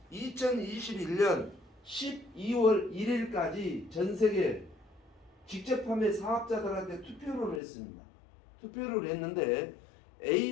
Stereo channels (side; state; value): right; drops out; at 7.6 s